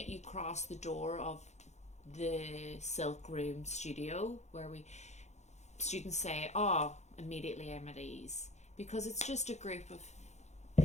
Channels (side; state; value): right; late; 0.33 ms